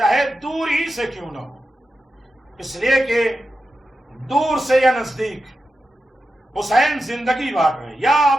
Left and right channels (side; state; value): both; normal; correlation 0.90